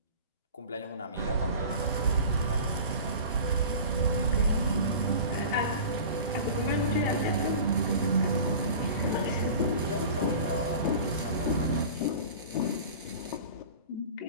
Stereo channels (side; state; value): both; inverted; correlation -0.38